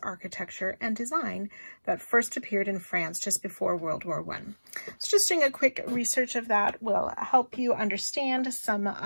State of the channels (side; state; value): both; inverted; correlation -1.00